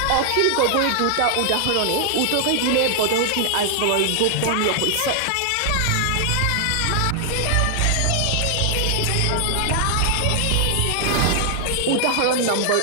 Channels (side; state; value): both; different; correlation 0.00